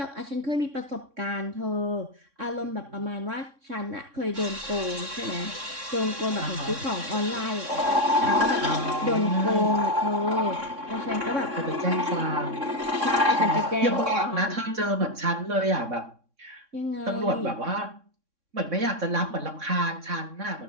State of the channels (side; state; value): left; late; 3.6 ms